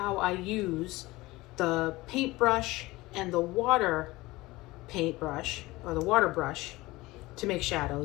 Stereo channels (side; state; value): right; quieter; 20.1 dB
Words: I use the paintbrush and the water paintbrush or the water brush to make